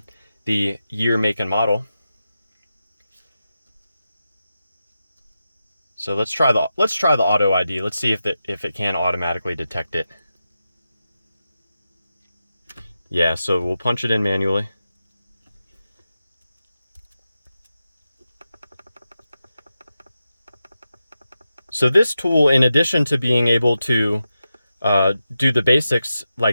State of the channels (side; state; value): both; inverted; correlation -0.90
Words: the year, make, and model. So let's try the auto ID. Let's see if it can automatically detect it. Yeah, so we'll punch it in manually. So this tool, in addition to being able to do the basics